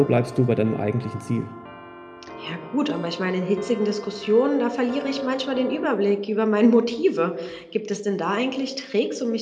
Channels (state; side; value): identical; both; correlation 1.00